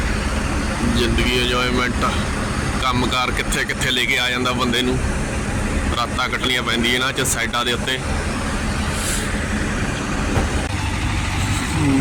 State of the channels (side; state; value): both; identical; correlation 1.00